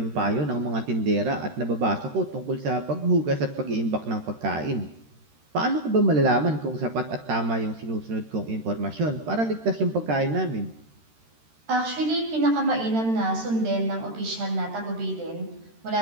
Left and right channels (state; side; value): late; left; 13 ms